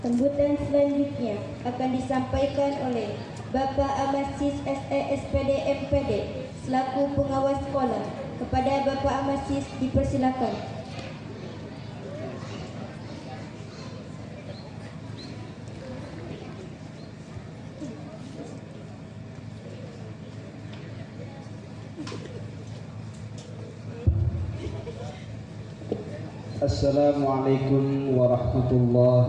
Sambutan selanjutnya akan disampaikan oleh Bapak Amasis SESPD MPD selaku pengawas sekolah. Kepada Bapak Amasis dipersilakan. Assalamualaikum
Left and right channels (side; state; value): both; identical; correlation 1.00